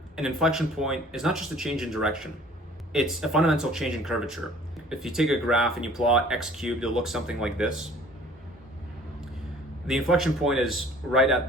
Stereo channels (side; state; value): both; normal; correlation 0.52